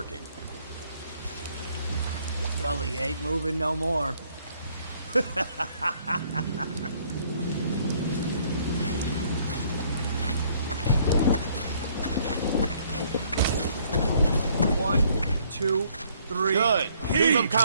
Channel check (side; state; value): both; inverted; correlation -0.64